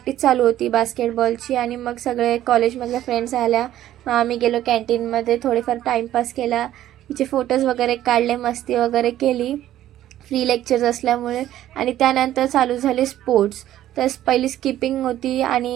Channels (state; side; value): quieter; left; 12.8 dB